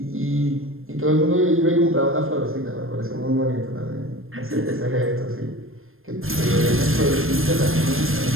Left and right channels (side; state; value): left; late; 0.60 ms